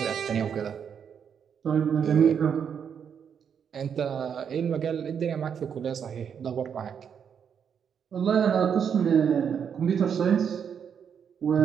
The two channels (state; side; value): quieter; left; 7.6 dB